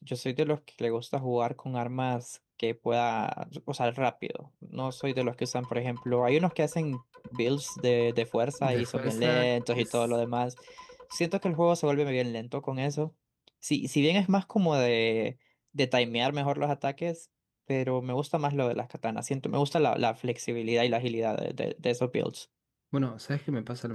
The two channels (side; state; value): both; identical; correlation 1.00